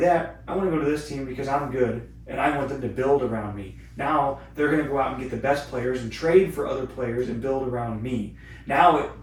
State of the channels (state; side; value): identical; both; correlation 1.00